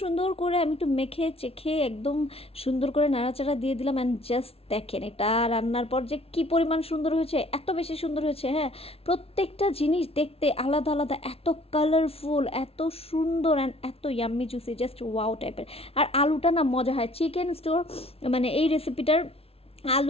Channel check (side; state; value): right; late; 0.28 ms